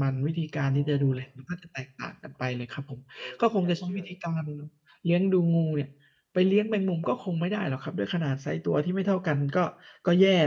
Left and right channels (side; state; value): both; identical; correlation 1.00